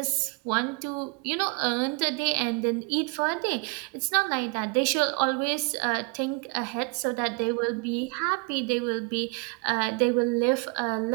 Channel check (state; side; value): quieter; left; 31.9 dB